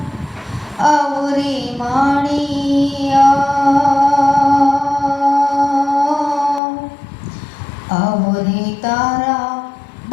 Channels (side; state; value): right; drops out; at 6.6 s